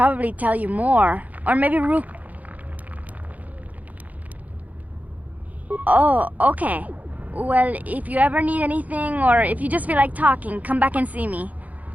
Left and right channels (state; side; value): late; left; 0.076 ms